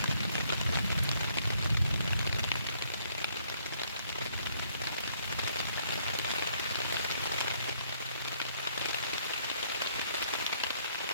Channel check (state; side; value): inverted; both; correlation -0.67